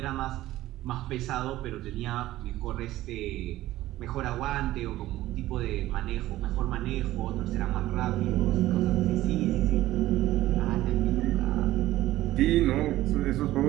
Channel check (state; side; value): quieter; left; 15.6 dB